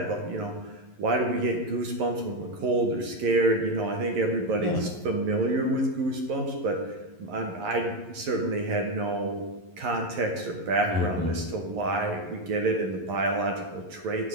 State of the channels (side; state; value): left; late; 11 ms